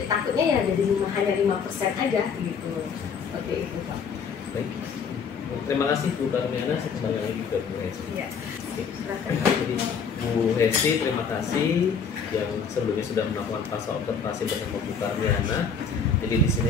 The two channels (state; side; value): quieter; right; 6.1 dB